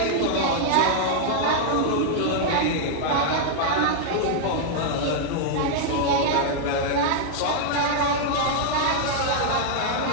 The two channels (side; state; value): both; different; correlation -0.01